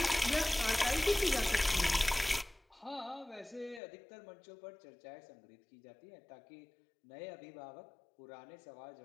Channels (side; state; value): right; drops out; at 3.8 s